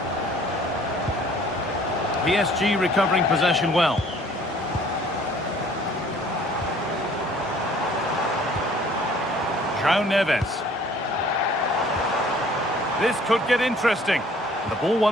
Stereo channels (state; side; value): normal; both; correlation 0.55